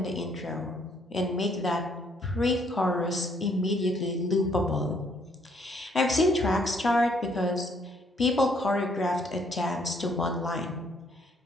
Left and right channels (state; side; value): normal; both; correlation 0.67